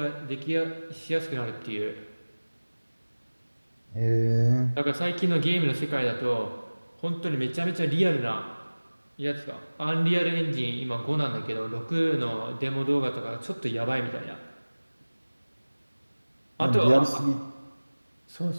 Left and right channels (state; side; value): inverted; both; correlation -1.00